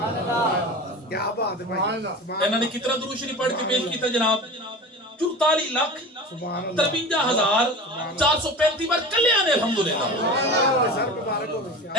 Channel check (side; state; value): both; normal; correlation 0.33